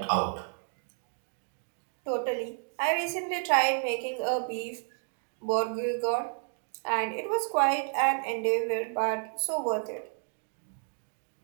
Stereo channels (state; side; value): silent; left; 57 dB below the other